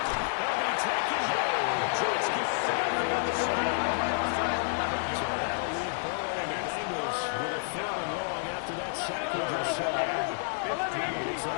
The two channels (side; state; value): right; silent; digital silence